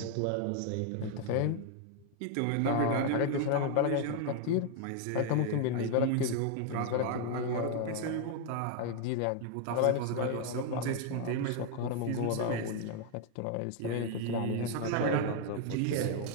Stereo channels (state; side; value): different; both; correlation 0.00